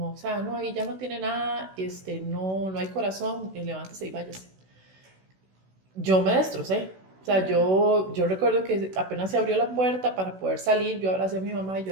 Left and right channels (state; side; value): late; left; 16 ms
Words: o sea, no, ahí ya no tiene nada, no hay corazón, levántese y váyase. Yo me destrocé, o sea, yo recuerdo que apenas se abrió la puerta para poder salir, yo abracé a mi mamá y